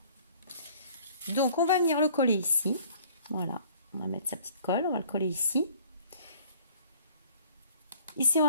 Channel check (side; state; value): both; inverted; correlation -0.54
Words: Donc, on va venir le coller ici. Voilà, on va mettre sa petite colle, on va le coller ici. Ici, on